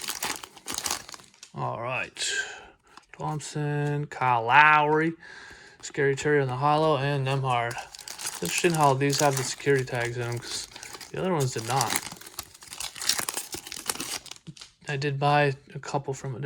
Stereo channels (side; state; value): both; identical; correlation 1.00